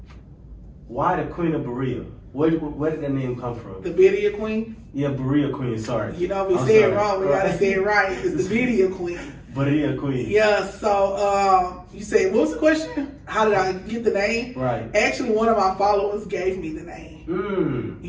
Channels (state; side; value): identical; both; correlation 1.00